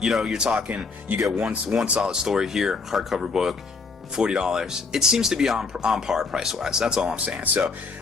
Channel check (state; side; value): quieter; right; 4.4 dB